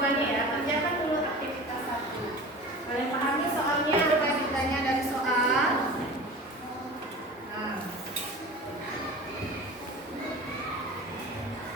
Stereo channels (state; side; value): normal; both; correlation 0.36